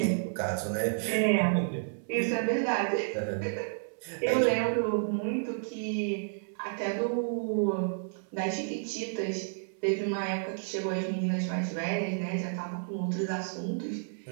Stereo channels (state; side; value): silent; left; 57 dB below the other